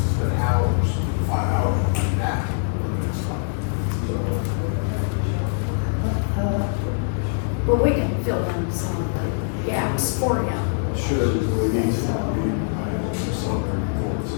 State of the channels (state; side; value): silent; right; digital silence